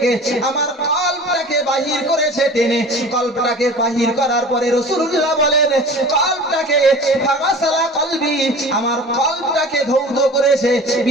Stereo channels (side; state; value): both; normal; correlation 0.40